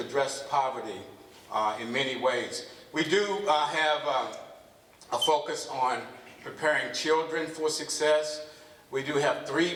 poverty in many ways. We do have a focus on preparing children for success. We do have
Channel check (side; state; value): both; identical; correlation 1.00